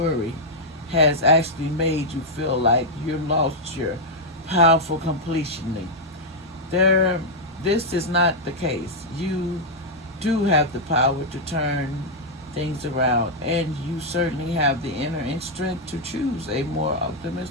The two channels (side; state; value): both; normal; correlation -0.04